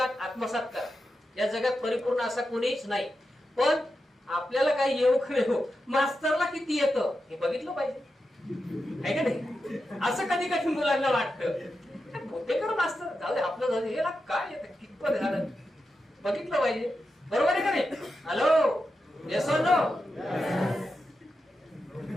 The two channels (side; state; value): both; normal; correlation 0.89